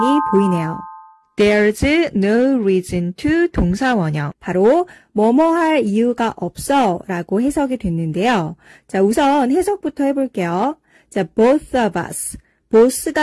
보이네요. There's no reason to 동사원형. 바로 뭐뭐 할 이유가 없어 라고 해석이 됐는데요. 자, 우선 해석부터 해볼게요. 자, both of us.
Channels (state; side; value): identical; both; correlation 1.00